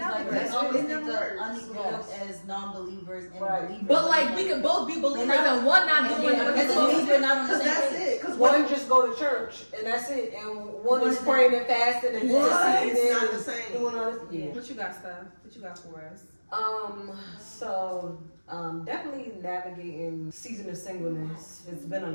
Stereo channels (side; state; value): both; inverted; correlation -1.00